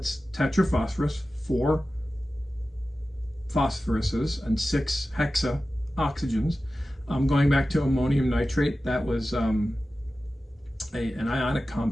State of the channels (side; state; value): both; normal; correlation 0.95